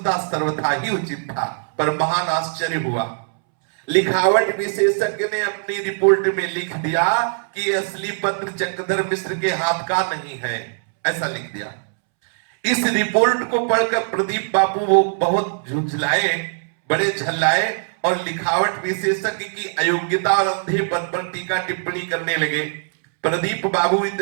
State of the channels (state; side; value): silent; left; 65 dB below the other